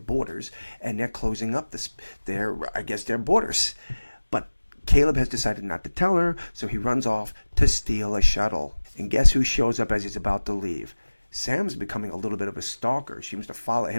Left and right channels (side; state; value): both; inverted; correlation -1.00